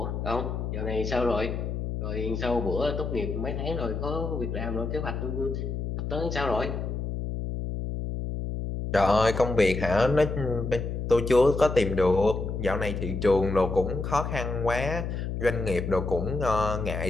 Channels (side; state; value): left; noise; hum, 4 dB below the sound